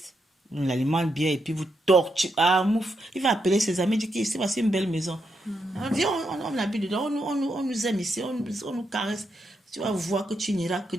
On l'alimente bien et puis vous torturez. Ah, mouf. Il va appeler ses amis, il dit que c'est une belle maison. Viens, on habite dedans, on nous aime ici, on nous caresse. Tu vas voir que tu n'iras que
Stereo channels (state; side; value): normal; both; correlation 0.82